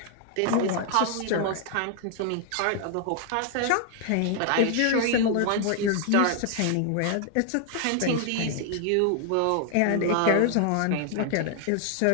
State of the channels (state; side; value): different; both; correlation 0.00